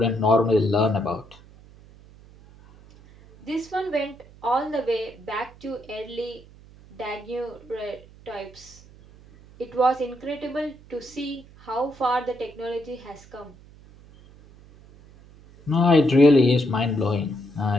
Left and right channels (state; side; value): noise; right; hum, 23 dB below the sound